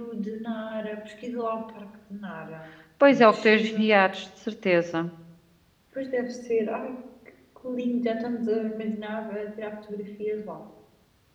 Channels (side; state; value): both; identical; correlation 1.00